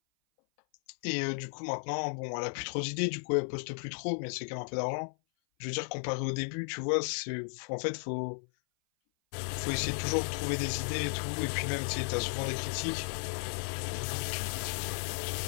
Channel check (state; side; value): silent; right; 55 dB below the other